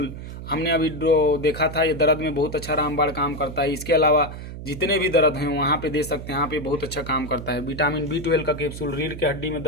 हमने अभी देखा था, ये दर्द में बहुत अच्छा रामबाण काम करता है। इसके अलावा जितने भी दर्द हैं वहाँ पे दे सकते हैं, यहाँ पे बहुत अच्छा काम करता है। विटामिन B12 का कैप्सूल, रीढ़ के हड्डी में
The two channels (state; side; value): noise; right; hum, 10 dB below the sound